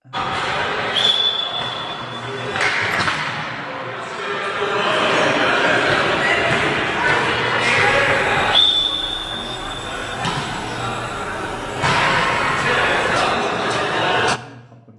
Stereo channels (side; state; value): both; identical; correlation 1.00